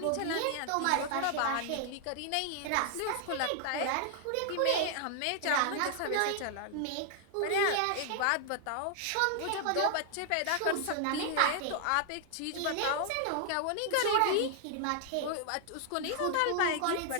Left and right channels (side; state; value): both; different; correlation 0.00